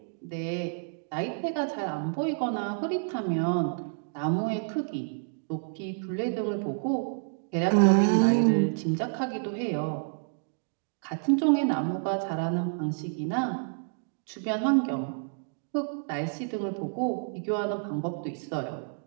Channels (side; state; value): left; silent; digital silence